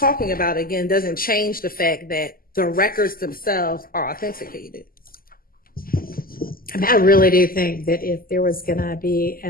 about it again, doesn't change the fact that the records themselves are authenticated. I mean, I really do think that if there was going to be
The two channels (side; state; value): right; late; 0.42 ms